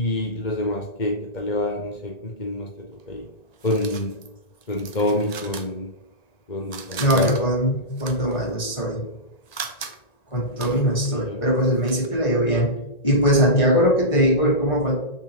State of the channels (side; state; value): right; late; 1.9 ms